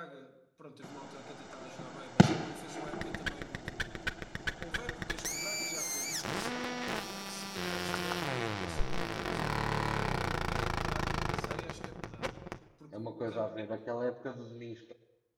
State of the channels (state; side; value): identical; both; correlation 1.00